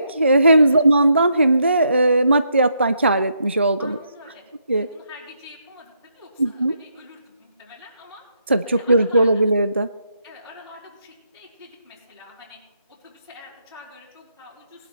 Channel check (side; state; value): both; inverted; correlation -0.77